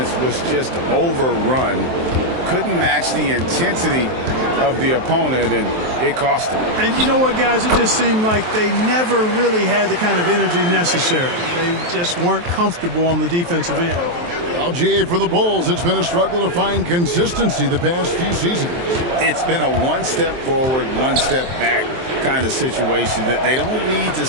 was just overrun. Couldn't match the intensity of the opponent, and it cost them. And you know what, guys? It just seemed like they never really had the kind of energy necessary. They just weren't comfortable on the defensive end. LGA for the Bulls. It's been a struggle to find consistency the past few seasons. It's been a one step forward, one step back kind of situation. That they don't need to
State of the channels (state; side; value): late; left; 23 ms